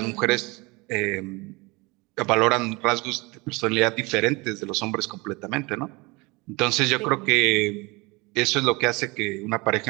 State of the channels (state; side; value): quieter; left; 25.4 dB